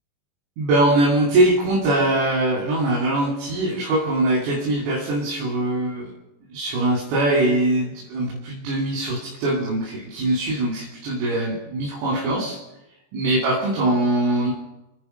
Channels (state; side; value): late; left; 21 ms